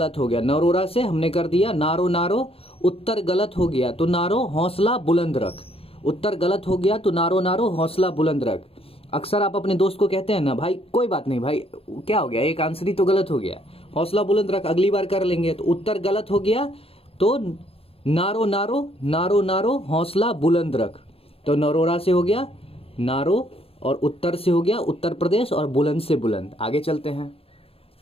नरोरा से हमने कर दिया नारो, उत्तर गलत हो गया तो नारो हौसला बुलंद रख, उत्तर गलत हो गया तो नारो हौसला बुलंद रख। अक्सर आप अपने दोस्त को कहते हैं ना, भाई कोई बात नहीं भाई, क्या हो गया, एक आंसर ही तो गलत हो गया, हौसला बुलंद रख, अगली बार कर लेंगे। तो उत्तर गलत हो गया तो नारो हौसला बुलंद रख, तो नरोरा से हो गया नारो, और उत्तर से हो गया उत्तर प्रदेश, और बुलंद से बुलंद। आगे चलते हैं।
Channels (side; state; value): right; late; 0.28 ms